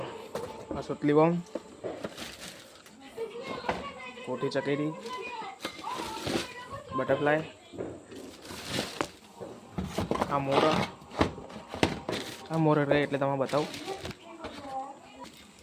આ સુતલી બોમ્બ, કોઠી ચકેરી, બટરફ્લાય, આ મોર રહે એટલે તમે બતાવું.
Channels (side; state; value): both; identical; correlation 1.00